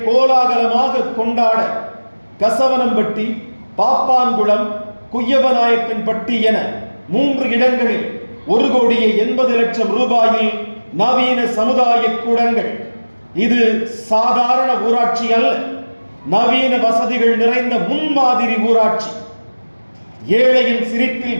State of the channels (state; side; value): inverted; both; correlation -1.00